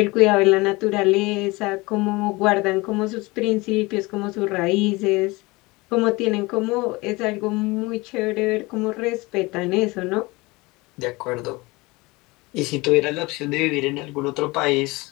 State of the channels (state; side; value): quieter; right; 23.2 dB